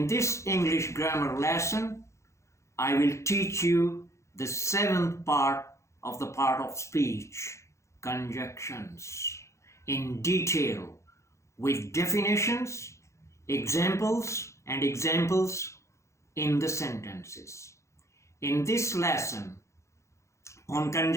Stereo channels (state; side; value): late; right; 0.14 ms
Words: this English grammar lesson, I will teach you the seventh part of speech, conjunctions, in detail with definitions, examples in the sentences. In this lesson, on